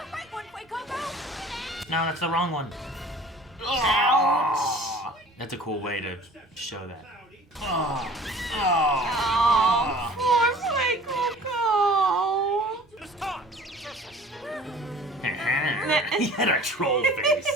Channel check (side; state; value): both; normal; correlation 0.47